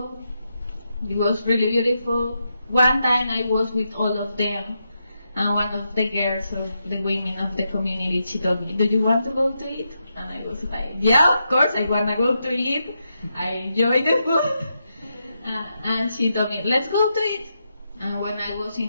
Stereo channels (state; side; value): inverted; both; correlation -0.84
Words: It was really beautiful. One time I was with all of them, and one of the girls or the women of the community, she told me, "Do you want to go to eat?" And I was like, "Yeah, of course, I want to go to eat. I enjoy the food." And she told me, "Let's go to eat." And when I was